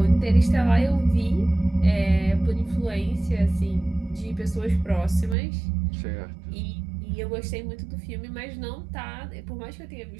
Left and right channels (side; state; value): left; drops out; at 5.4 s